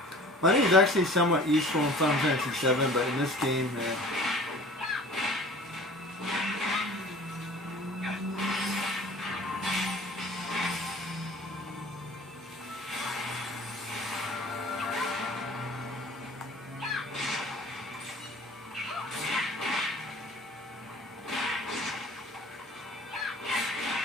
Money is is actually somewhat useful in Final Fantasy VII, but in this game,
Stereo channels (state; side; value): normal; both; correlation 0.45